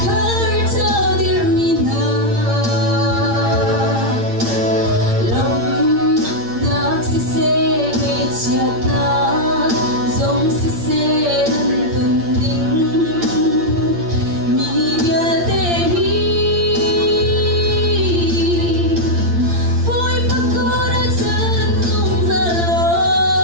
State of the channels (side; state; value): left; late; 8.7 ms